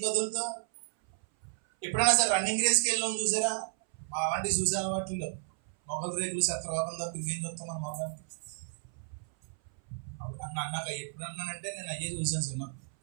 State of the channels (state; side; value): silent; left; 56 dB below the other